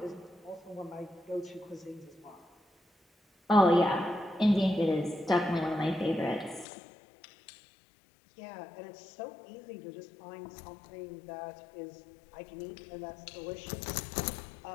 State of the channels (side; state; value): right; drops out; at 6.7 s